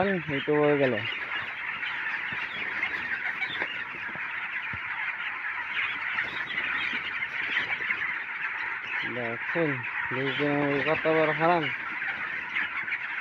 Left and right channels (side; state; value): both; identical; correlation 1.00